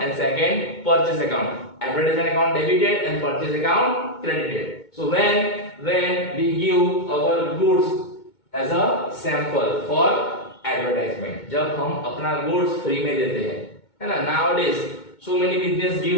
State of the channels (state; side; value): late; right; 2.2 ms